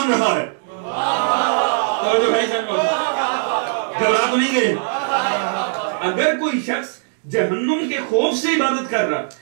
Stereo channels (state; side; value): silent; left; digital silence